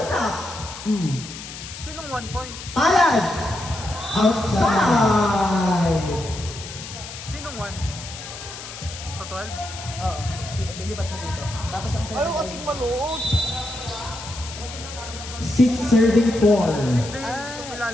Sinong 1 point? Palad. Outside. Sinong 1? Sa 12? Oo. Lipat mo dito. Tapos ang 7 ay... malood. 6 serving 4. Hindi, hindi ko Ah.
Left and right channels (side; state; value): left; noise; hiss, 12 dB below the sound